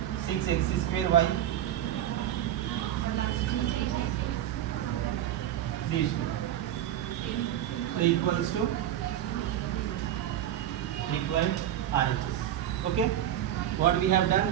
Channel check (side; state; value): left; quieter; 11.6 dB